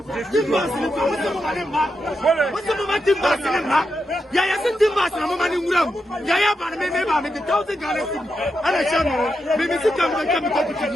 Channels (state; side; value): normal; both; correlation 0.86